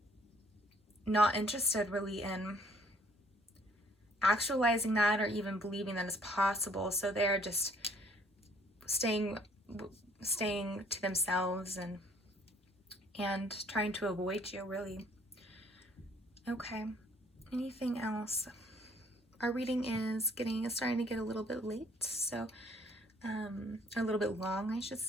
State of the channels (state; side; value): normal; both; correlation 0.60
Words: not interested really in actualizing that or even believing that it's possible. So they're just staying to themselves and trying to avoid you, really. Okay, anything else? Our reading is starting to get a little bit late, so a little bit long, I should